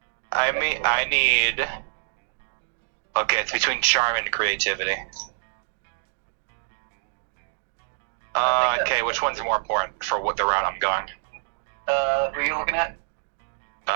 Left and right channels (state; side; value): silent; left; digital silence